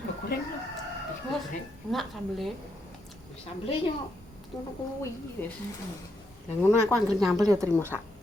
goreng lho digoreng Enak sambelnya. sambel yo ngono kuwi wis lah ngono aku anggere nyambel yo trimo sak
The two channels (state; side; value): normal; both; correlation 0.79